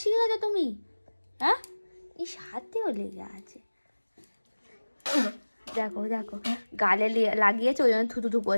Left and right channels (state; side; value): inverted; both; correlation -1.00